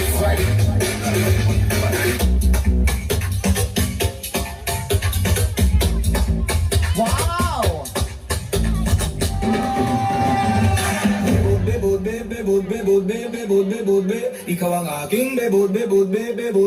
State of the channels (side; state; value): both; identical; correlation 1.00